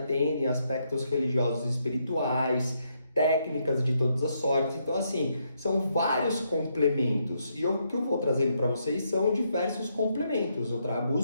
aspectos religiosos e espirituais, técnicas de todas as sortes. Então, assim, são vários complementos. E o que eu vou trazendo para vocês são diversos complementos. Eu trago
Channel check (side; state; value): both; inverted; correlation -0.77